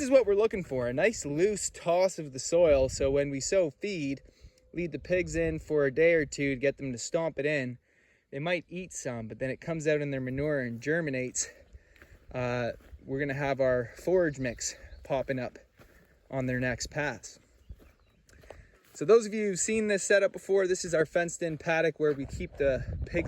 what we're looking for, a nice loose toss of the soil, so when we sow feed, lead the pigs in for a day or two to get them to stomp it in. They might eat some, but then it comes out in their manure and germinates. We're gonna have our forage mix popping up on their next pass. So those of you who've seen this setup before, this is our fenced in paddock where we keep the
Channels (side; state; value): both; identical; correlation 1.00